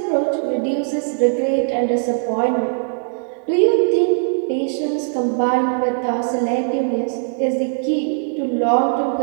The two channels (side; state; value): left; silent; digital silence